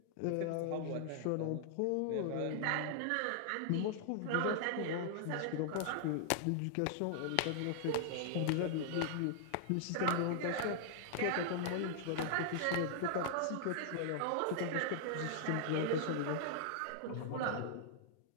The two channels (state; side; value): different; both; correlation -0.01